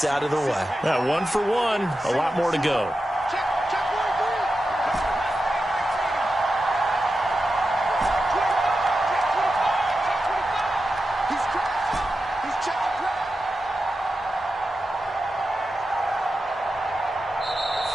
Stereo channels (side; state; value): both; normal; correlation 0.91